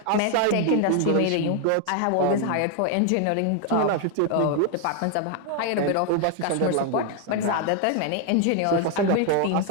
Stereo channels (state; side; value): different; both; correlation 0.00